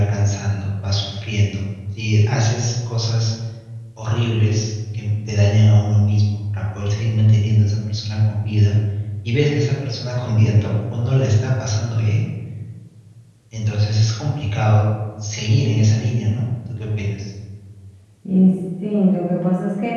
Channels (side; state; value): both; identical; correlation 1.00